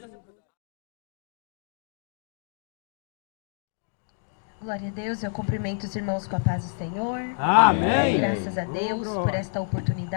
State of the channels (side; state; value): right; silent; digital silence